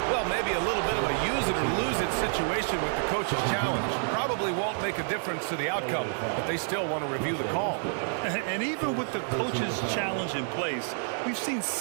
well, maybe a little bit of a use-it-or-lose-it situation with the coach's challenge. Probably won't make a difference to the outcome, but they still want to review the call. And even with the coach's challenge in place, we've seen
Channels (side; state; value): left; silent; digital silence